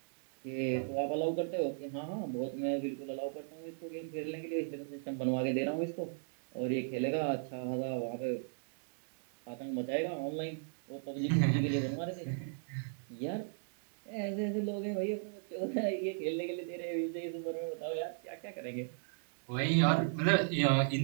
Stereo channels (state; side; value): silent; left; digital silence